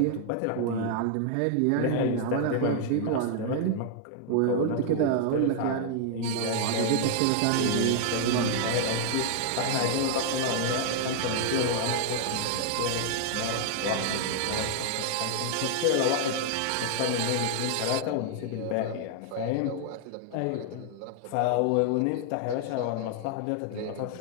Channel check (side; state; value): both; different; correlation 0.00